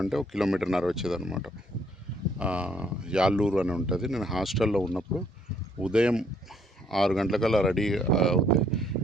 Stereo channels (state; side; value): normal; both; correlation 0.66